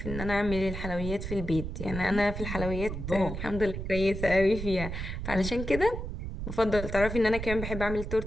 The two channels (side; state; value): right; noise; rumble, 6 dB below the sound